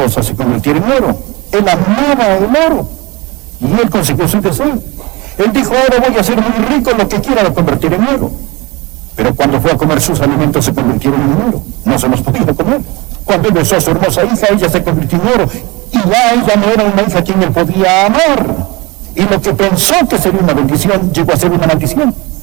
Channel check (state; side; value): quieter; left; 24.3 dB